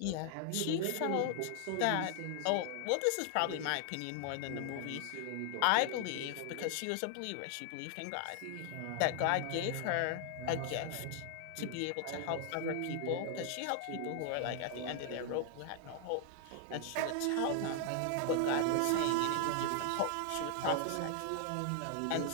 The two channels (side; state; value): both; different; correlation 0.00